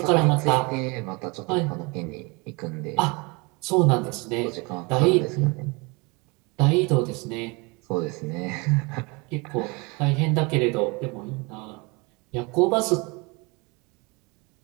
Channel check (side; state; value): left; quieter; 28.1 dB